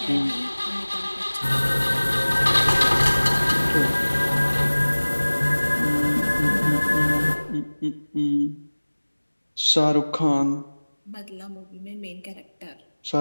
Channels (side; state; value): both; inverted; correlation -1.00